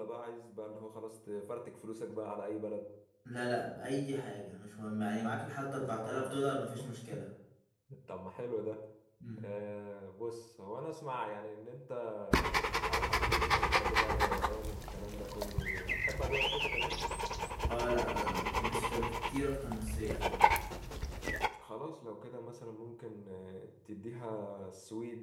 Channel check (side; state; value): both; identical; correlation 1.00